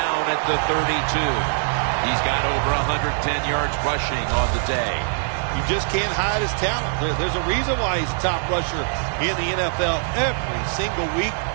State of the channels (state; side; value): silent; left; 64 dB below the other